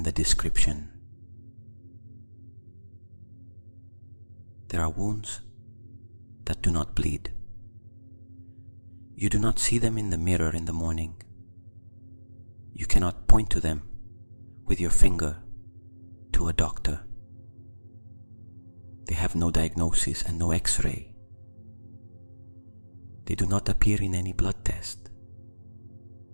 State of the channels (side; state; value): both; inverted; correlation -1.00